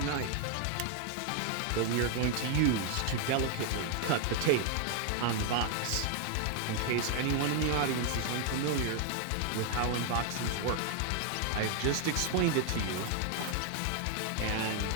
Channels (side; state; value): both; different; correlation 0.00